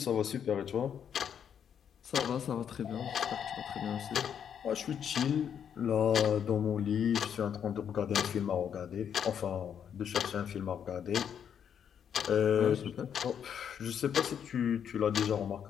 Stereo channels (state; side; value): quieter; right; 8.3 dB